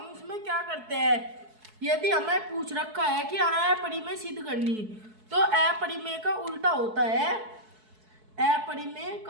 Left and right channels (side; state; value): left; late; 4.6 ms